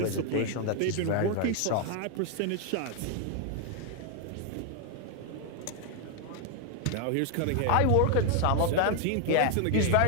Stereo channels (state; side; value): different; both; correlation 0.00